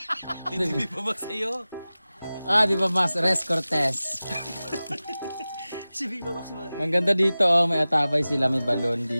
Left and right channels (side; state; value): both; inverted; correlation -0.97